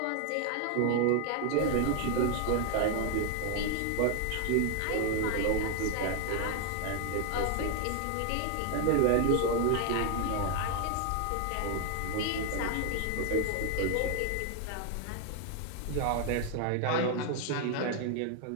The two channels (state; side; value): different; both; correlation 0.01